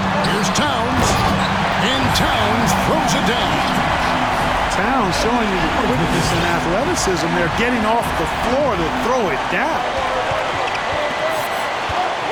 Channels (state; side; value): identical; both; correlation 1.00